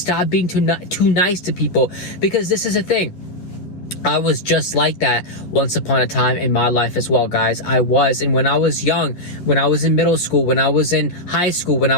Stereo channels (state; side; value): late; right; 10 ms